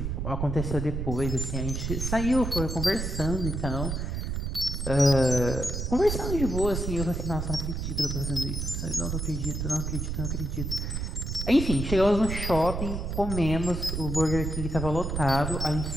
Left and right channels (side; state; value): right; noise; rumble, 3 dB below the sound